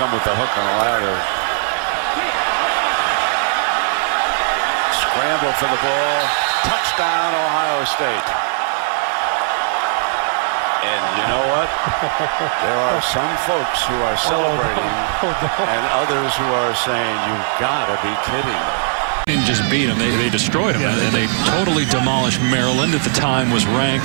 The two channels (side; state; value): left; silent; digital silence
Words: with the hook on the ladder. Scramble for the ball. Touchdown, Ohio State. And you know what? There are some folks who are celebrating and others who are saying, you've got to be kidding. Didn't just beat them, they destroyed them, and they totally demolished Maryland. At the time was ranked.